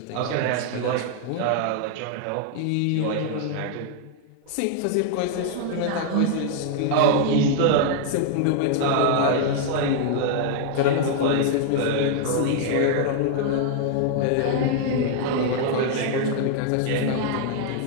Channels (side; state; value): both; different; correlation 0.00